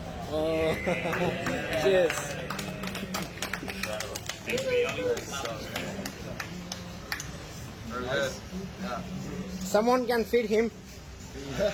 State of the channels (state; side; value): identical; both; correlation 1.00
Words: Oh, cheers. Very good. Yeah. Someone can feed him.